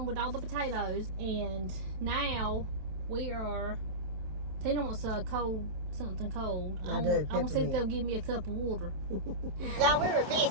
with all the potatoes, and now we are. Tina wants something cold. I want to see if they'll give me a cup of water. Y'all, we were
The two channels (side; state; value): left; late; 27 ms